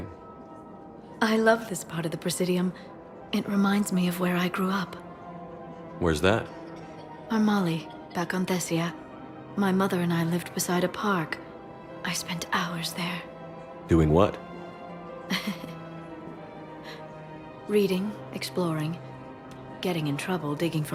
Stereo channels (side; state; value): both; identical; correlation 1.00